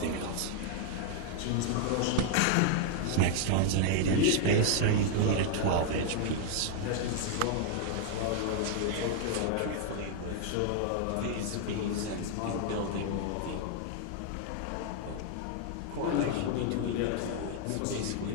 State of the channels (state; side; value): different; both; correlation 0.00